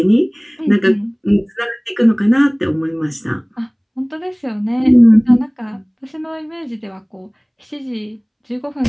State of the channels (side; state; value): both; identical; correlation 1.00